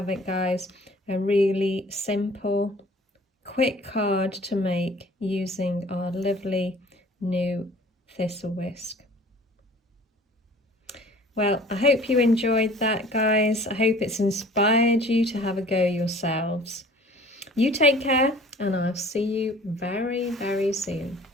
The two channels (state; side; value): normal; both; correlation 0.49